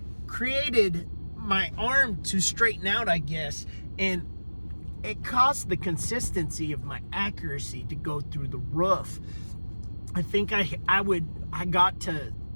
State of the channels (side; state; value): both; inverted; correlation -1.00